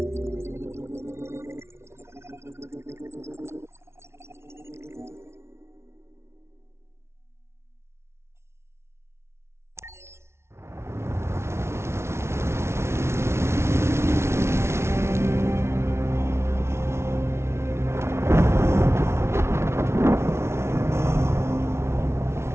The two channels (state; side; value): late; left; 0.13 ms